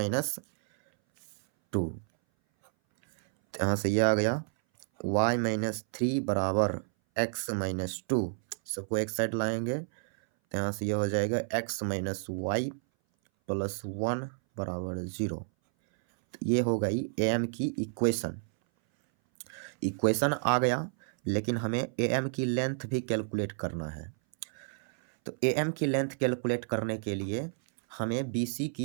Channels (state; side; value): silent; left; 57 dB below the other